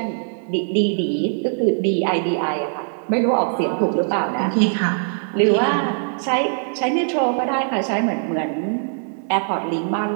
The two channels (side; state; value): left; silent; digital silence